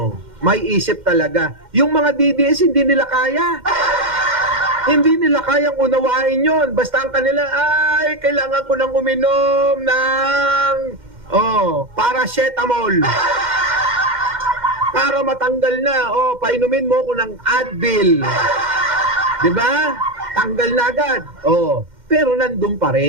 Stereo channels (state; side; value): late; left; 2.1 ms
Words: may isip talaga. Yung mga DDS hindi nila kaya. Hindi nila kayang unawain yon. Basta ang kanila, kailangan ko nang uminom ng paracetamol. Para matanggal na. Painumin mo ko ng Advil. Diba? Tanggal na agad. Pero nandun pa